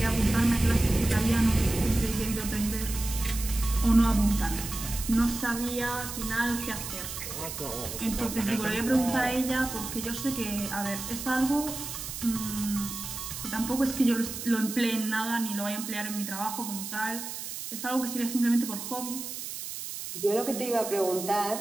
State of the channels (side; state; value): right; noise; hiss, 7 dB below the sound